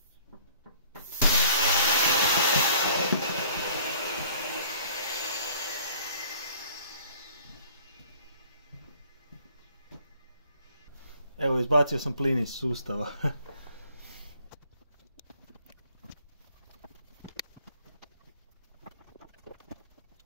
Evo, izbacio sam plin iz sustava.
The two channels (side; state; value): both; inverted; correlation -0.54